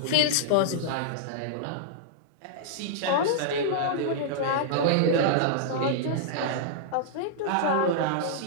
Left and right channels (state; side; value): different; both; correlation -0.02